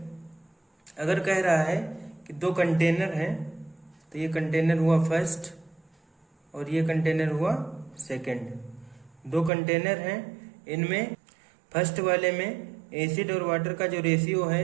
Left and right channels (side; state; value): left; drops out; at 9.5 s